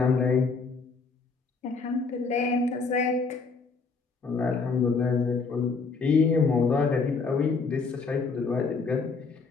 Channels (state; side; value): quieter; right; 4.6 dB